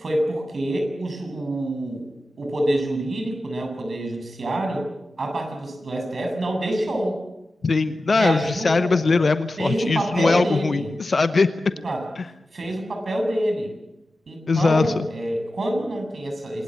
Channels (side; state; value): both; normal; correlation 0.93